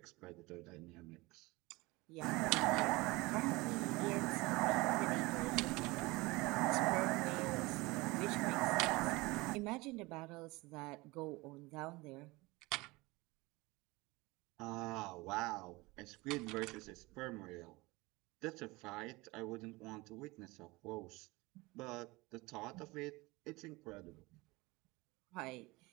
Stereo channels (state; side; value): quieter; left; 22.7 dB